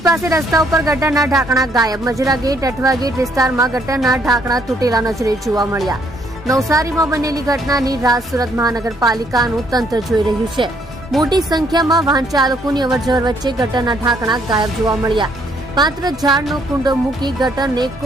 પાસે રસ્તા ઉપર ગટરના ઢાંકણા ગાયબ. મજરા ગેટ અઠવા ગેટ વિસ્તારમાં ગટરના ઢાંકણા તૂટેલા નજરે જોવા મળ્યા. નવસારીમાં બનેલી ઘટનાની રાહ સુરત મહાનગરપાલિકાનું તંત્ર જોઈ રહ્યું છે. મોટી સંખ્યામાં વાહન ચાલકોની અવરજવર વચ્ચે ગટરના ઢાંકણા ગાયબ જોવા મળ્યા. માત્ર ઝાડનો કુંડો મૂકી ગટરને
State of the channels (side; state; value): both; normal; correlation 0.68